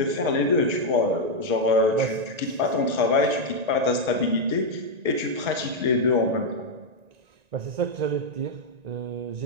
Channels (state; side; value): late; left; 1.9 ms